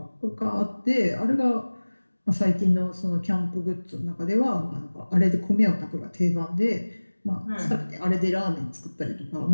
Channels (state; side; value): inverted; both; correlation -1.00